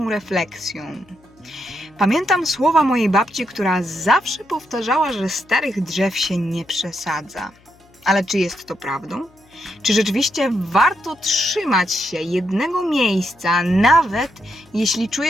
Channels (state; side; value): noise; left; hum, 30 dB below the sound